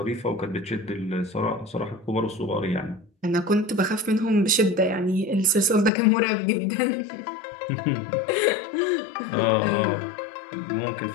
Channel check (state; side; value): drops out; right; at 5.9 s